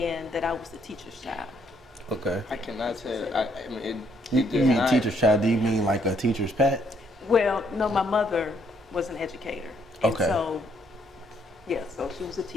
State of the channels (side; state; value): both; normal; correlation 0.69